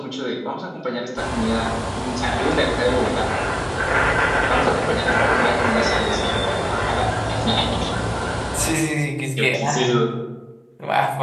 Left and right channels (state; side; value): identical; both; correlation 1.00